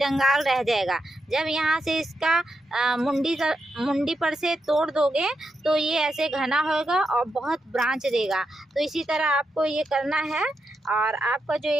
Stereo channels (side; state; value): both; normal; correlation 0.85